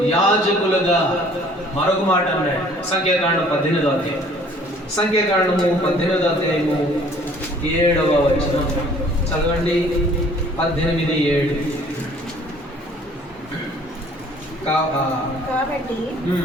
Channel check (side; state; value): both; normal; correlation 0.55